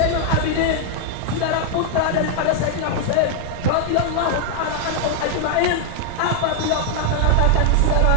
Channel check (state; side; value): different; both; correlation 0.00